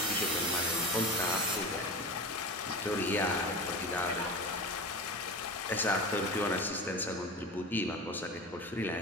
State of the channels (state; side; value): normal; both; correlation 0.29